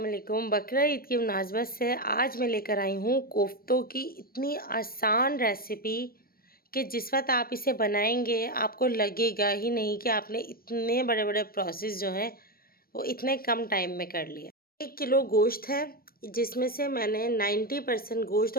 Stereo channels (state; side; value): late; right; 0.43 ms